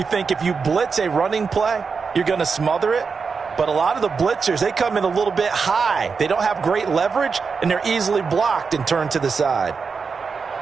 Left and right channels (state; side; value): quieter; left; 5.2 dB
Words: think if you blitz a running play, you're going to smother it. But a lot of the blitzers, they come in a little bit high. They don't have great leverage, and they're easily blocked and turned to the side.